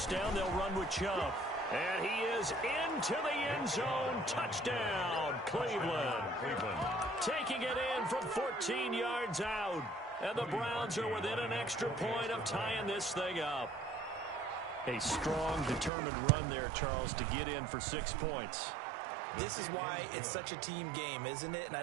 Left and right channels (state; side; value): drops out; left; at 15.9 s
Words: down, they'll run with Chubb. And he is into the end zone. Touchdown, Cleveland. Taking it in from 14 yards out. And the Browns are within an extra point of tying this thing up. A strong, determined run there, Charles, to get in for 6 points. This is why it's such a team game, isn't it? And I